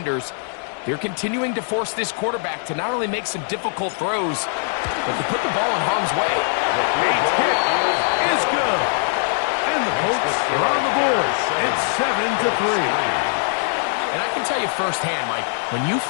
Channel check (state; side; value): silent; right; 61 dB below the other